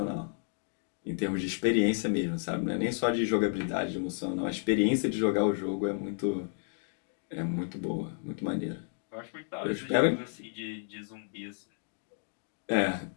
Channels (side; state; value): right; silent; 57 dB below the other